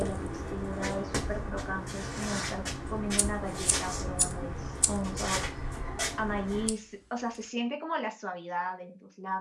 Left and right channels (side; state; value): both; identical; correlation 1.00